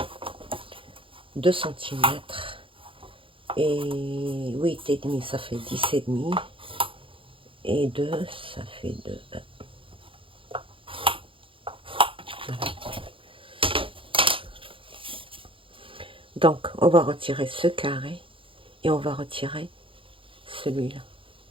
2 cm. Et 8 et demi, ça fait 10 et demi. Et 2, ça fait 2. Voilà. Donc, on va retirer ce carré et on va retirer celui-là.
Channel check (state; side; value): late; left; 0.25 ms